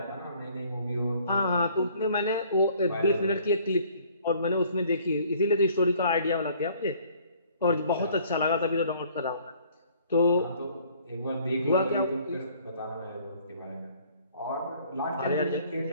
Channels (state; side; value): inverted; both; correlation -0.57